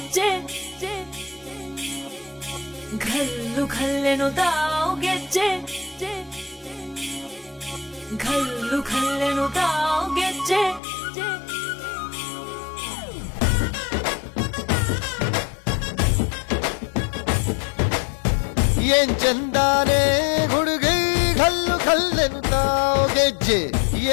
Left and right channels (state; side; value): drops out; right; at 10.8 s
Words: ಘಲ್ಲು ಘಲ್ಲೆನು ತಾವು ಗೆಜ್ಜೆ ಘಲ್ಲು ಘಲ್ಲೆನು ತಾವು ಗೆಜ್ಜೆ ಏನ್ ಚಂದಾನೆ ಹುಡುಗಿ ಘಲ್ಲು ಘಲ್ಲೆನು ತಾವು ಗೆಜ್ಜೆ